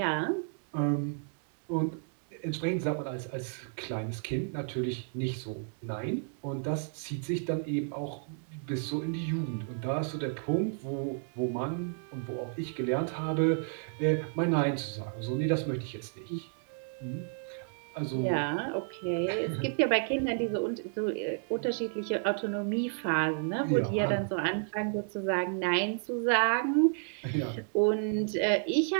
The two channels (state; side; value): silent; left; 57 dB below the other